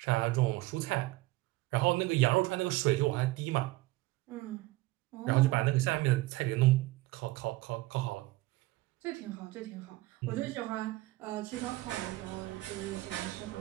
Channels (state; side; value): quieter; left; 19.1 dB